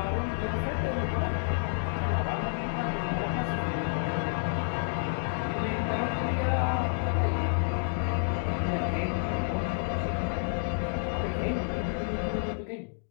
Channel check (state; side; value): silent; right; digital silence